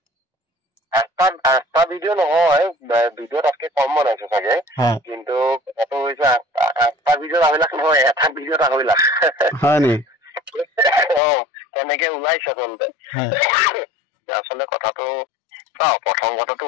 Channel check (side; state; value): right; drops out; at 11.2 s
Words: আঠটা ভিডিঅ' নহয়, ভিডিঅ' তাতকে কম বনাইছে চাগে, কিন্তু কথাটো হৈছে 8টা ভিডিঅ'ত 2.5 লাখ নহয়, এটা ভিডিঅ'ত 2.5 লাখ। হয় নি? তেনেকে ওলাইছে আচলতে। আচলতে কথাটো প্ৰথম কথাটো